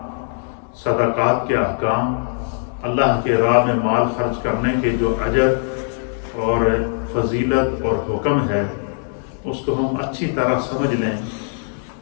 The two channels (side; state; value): right; silent; digital silence